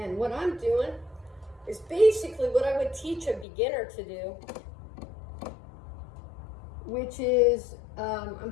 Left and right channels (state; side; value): drops out; right; at 3.5 s